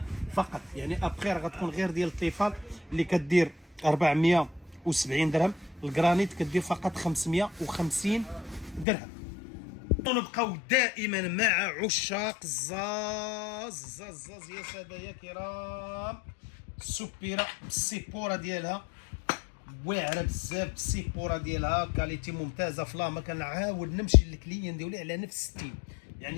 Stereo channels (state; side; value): drops out; right; at 8.8 s